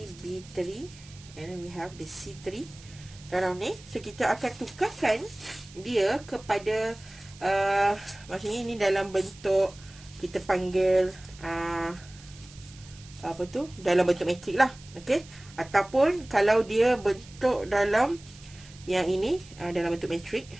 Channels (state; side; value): noise; right; hiss, 21 dB below the sound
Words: B3, and then we have the C3 dalam ni. So kita akan tukarkan dia kepada maksudnya ini dalam bentuk kita panggil dalam bentuk matrik lah. Okey, ataupun kalau dia bentuk dalam yang ini dalam bentuk matrik.